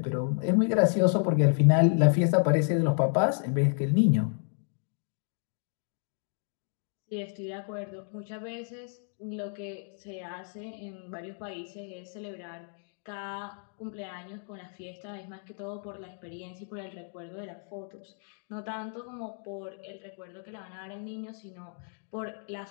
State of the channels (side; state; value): right; silent; 57 dB below the other